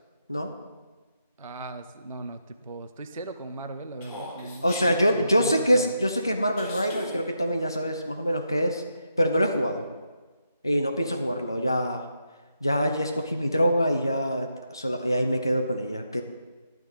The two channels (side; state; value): both; inverted; correlation -0.82